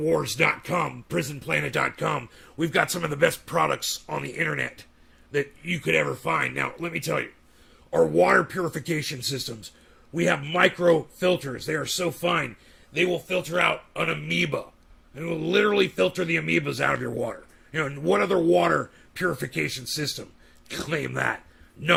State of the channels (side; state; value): both; identical; correlation 1.00